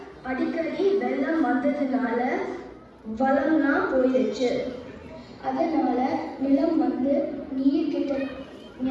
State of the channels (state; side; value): identical; both; correlation 1.00